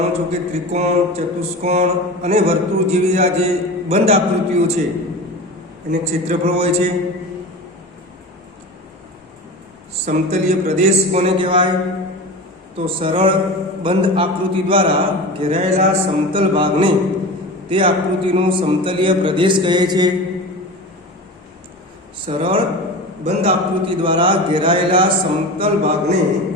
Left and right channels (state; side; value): normal; both; correlation 0.30